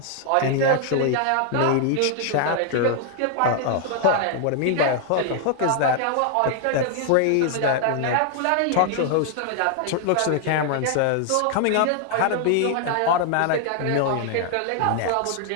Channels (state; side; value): different; both; correlation 0.00